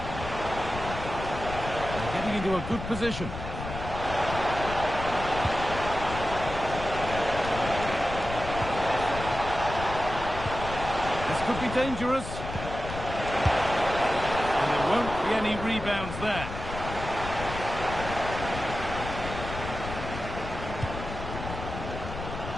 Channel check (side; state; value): left; noise; rumble, 8 dB below the sound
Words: They're getting into a good position. This could be dangerous. And there won't be any rebounds there.